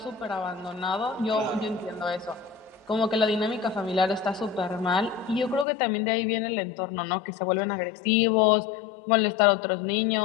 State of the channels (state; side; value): drops out; right; at 5.7 s